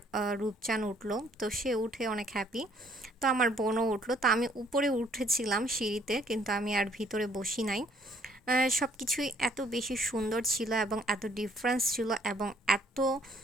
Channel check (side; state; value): both; normal; correlation 0.62